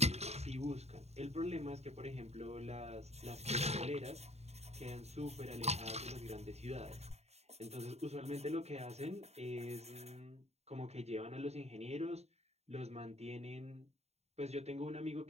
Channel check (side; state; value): left; late; 0.31 ms